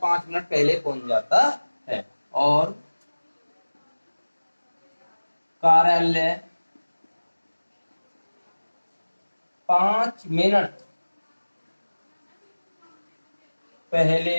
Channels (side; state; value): both; inverted; correlation -1.00